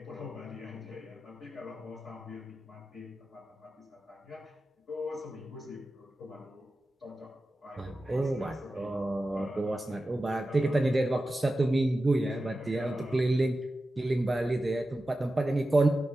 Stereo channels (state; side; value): normal; both; correlation 0.93